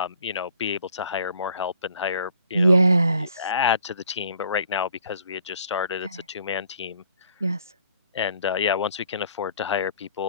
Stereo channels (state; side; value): inverted; both; correlation -0.59